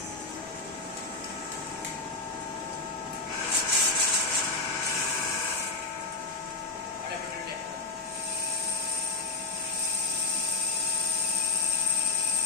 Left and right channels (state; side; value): quieter; right; 3.7 dB